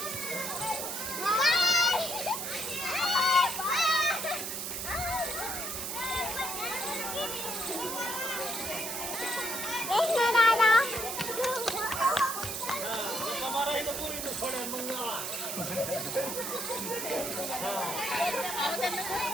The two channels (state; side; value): noise; right; hiss, 4 dB below the sound